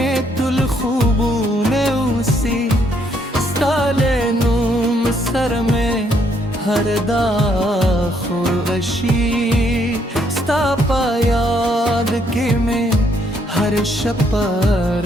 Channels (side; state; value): both; normal; correlation 0.71